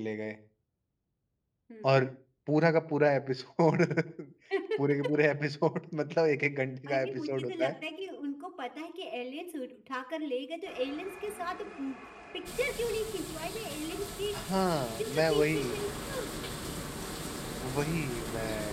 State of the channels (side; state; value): both; identical; correlation 1.00